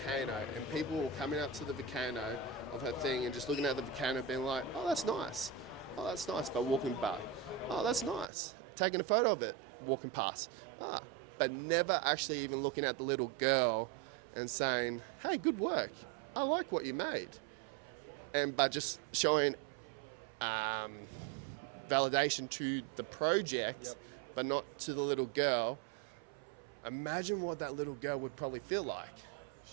and people were coming up to the volcano of her thing and just looking at the volcano being like, oh, that's nice. Oh, that's nice, but walking by. Oh, that's nice. Taking a photo of it, walking past. But never actually even looking at the little girl and saying, hey, good work. I like what you made. And by just showing validation to the project, Yep. but not to the little girl. Imagine what that little girl would probably feel like.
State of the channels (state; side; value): drops out; left; at 8.3 s